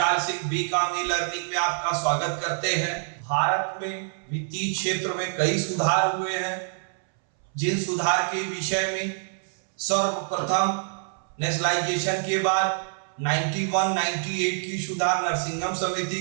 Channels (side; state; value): left; silent; 61 dB below the other